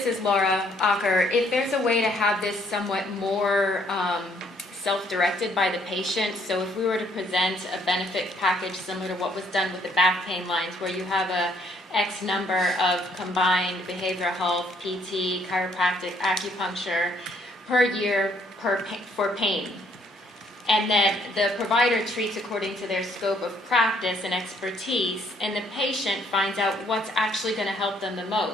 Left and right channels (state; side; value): normal; both; correlation 0.66